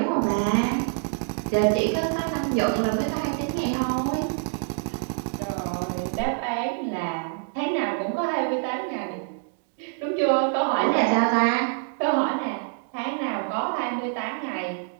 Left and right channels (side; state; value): left; silent; 61 dB below the other